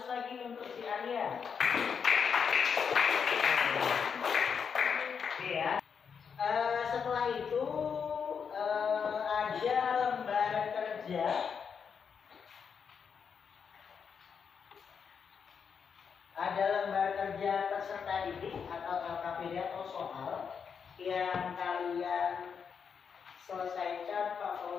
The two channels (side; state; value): right; quieter; 6.6 dB